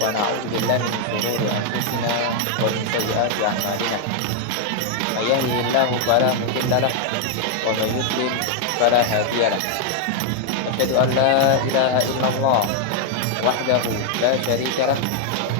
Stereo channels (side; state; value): both; different; correlation 0.00